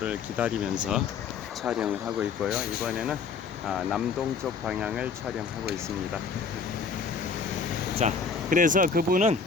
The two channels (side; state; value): right; quieter; 5.4 dB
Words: 기다리면서 촬영을 하고 있고요. 이번에는 남동쪽 방향을 촬영하고 있습니다. 자, 그래서 그분은